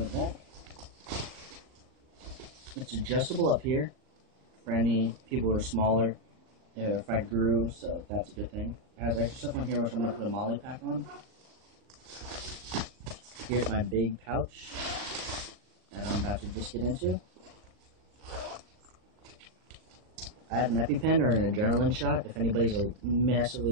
the back. It's adjustable up here for any people who are smaller, if I grew, so that's a good thing. It has extra stuff on here, which I'm going to put a molly pack on. Here's my big pouch that I'm about to just get into. I have an EpiPen or an adrenaline shot if anybody's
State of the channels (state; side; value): late; left; 38 ms